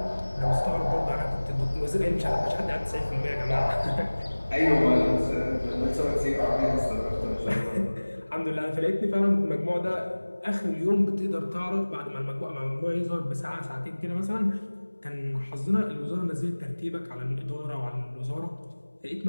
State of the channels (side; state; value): both; inverted; correlation -1.00